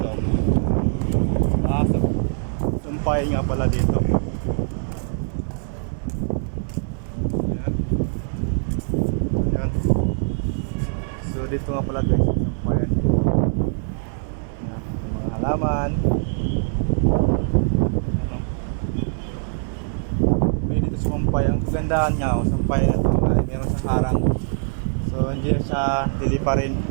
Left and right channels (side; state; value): left; silent; digital silence